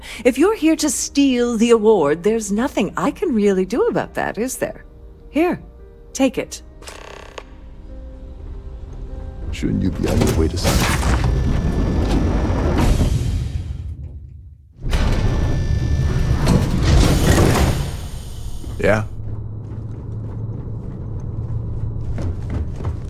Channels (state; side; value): identical; both; correlation 1.00